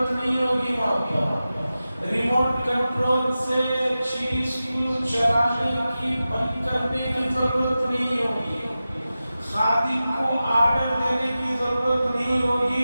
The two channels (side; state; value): both; inverted; correlation -0.94